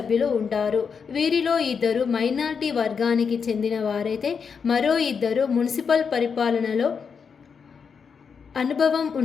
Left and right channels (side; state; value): right; quieter; 6.1 dB